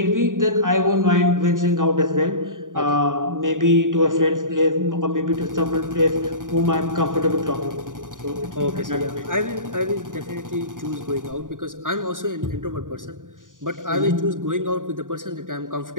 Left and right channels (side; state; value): left; late; 0.88 ms